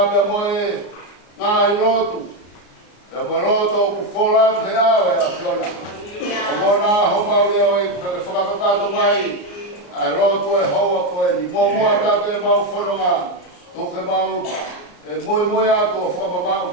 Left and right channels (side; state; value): right; late; 33 ms